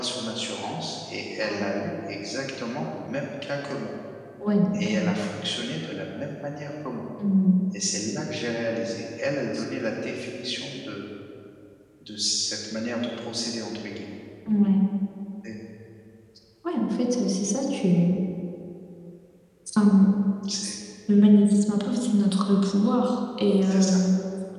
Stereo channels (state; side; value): identical; both; correlation 1.00